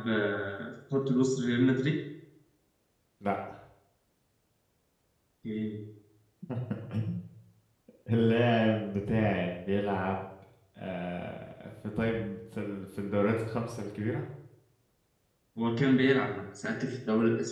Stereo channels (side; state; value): both; identical; correlation 1.00